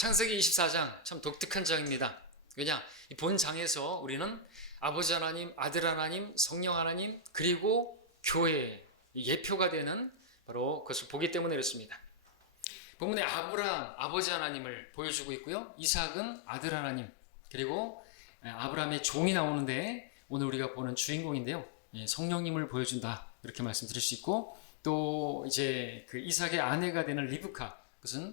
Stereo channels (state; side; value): drops out; right; at 12.7 s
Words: 24장 참 독특한 장입니다. 왜냐? 이 본 장에서 우리는 아버지 하나님, 아들 하나님, 성령 하나님, 그리고 교회 예표가 되는 바로 그것을 보기 때문에 그렇습니다. 본문에 아브라함, 아버지 하나님을 보여주고 있고요. 이삭은 아들 하나님, 그리고 아브라함의 종이 나오는데 오늘 우리가 보는 주인공인데요. 성령님을 보여준다. 이렇게 말씀드릴 수 있고, 또 이제 그 이삭의 아내가 되는 리브카,